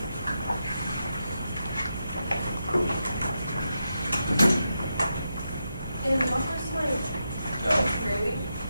And what was my No. grading?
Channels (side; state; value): both; inverted; correlation -0.86